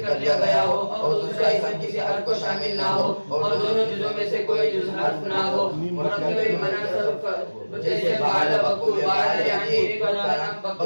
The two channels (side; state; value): both; inverted; correlation -1.00